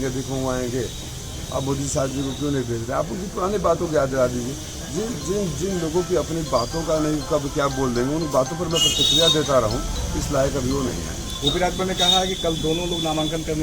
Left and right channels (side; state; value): both; identical; correlation 1.00